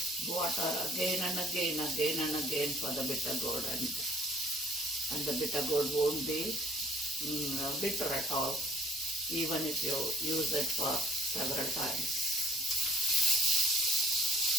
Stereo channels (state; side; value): normal; both; correlation 0.57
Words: water again and again for the bitter gourd, and the bitter gourd won't be bitter at all, even if you use it for several times.